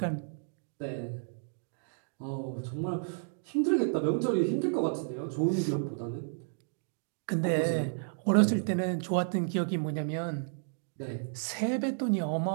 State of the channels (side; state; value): left; silent; digital silence